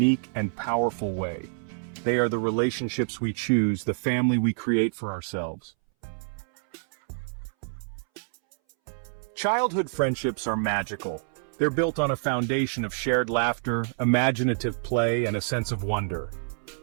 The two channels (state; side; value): silent; left; 60 dB below the other